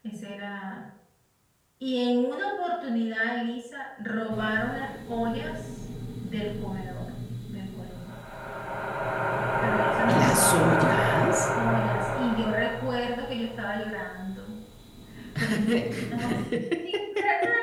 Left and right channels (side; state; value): both; identical; correlation 1.00